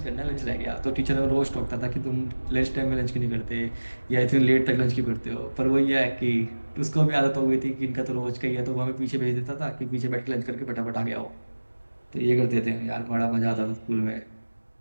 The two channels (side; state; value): both; inverted; correlation -1.00